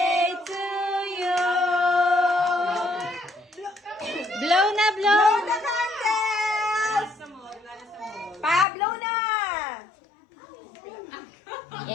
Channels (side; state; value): right; drops out; at 8.7 s